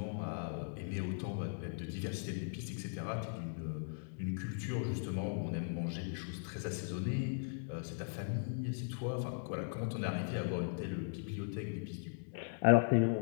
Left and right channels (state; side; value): silent; right; digital silence